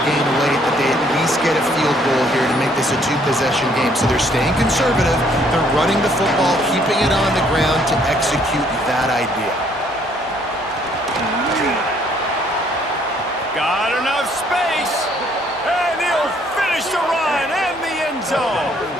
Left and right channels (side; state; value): both; normal; correlation 0.65